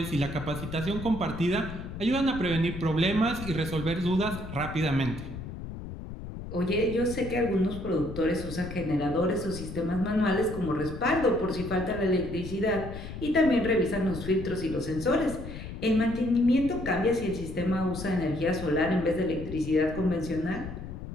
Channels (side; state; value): left; noise; rumble, 9 dB below the sound